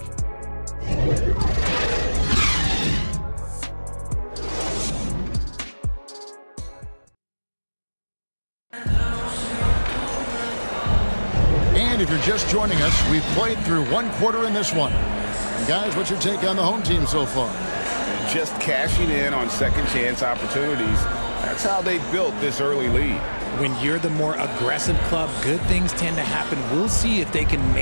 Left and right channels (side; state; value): both; inverted; correlation -1.00